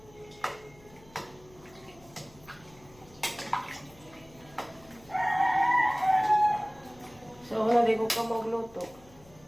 Sabi ko ka magluto.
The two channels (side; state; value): left; noise; hum, 25 dB below the sound